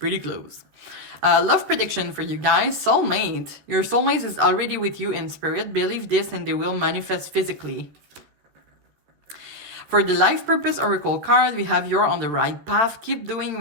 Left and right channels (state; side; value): late; left; 13 ms